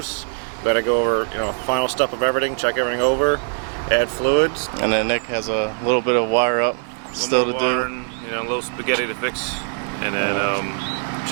Got to go over, you know, final step of everything, check everything over, add fluids. And then Nick has a little bit of wire up still to do. You know, a little spaghetti to fix, and then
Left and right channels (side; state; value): left; silent; 58 dB below the other